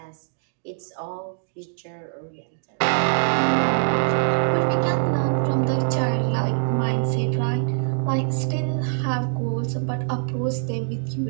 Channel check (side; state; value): left; silent; digital silence